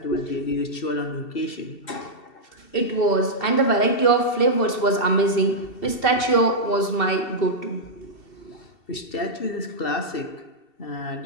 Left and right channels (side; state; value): right; late; 2.7 ms